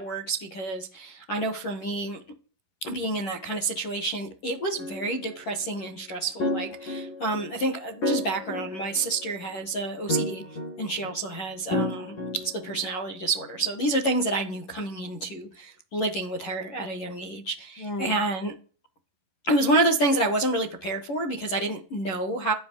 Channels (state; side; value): late; right; 11 ms